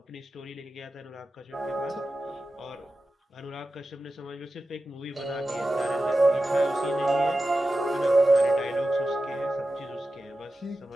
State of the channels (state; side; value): normal; both; correlation 0.93